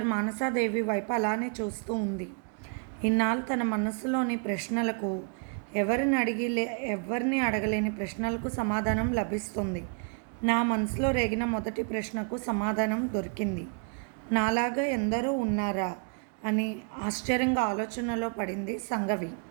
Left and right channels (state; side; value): quieter; left; 39.0 dB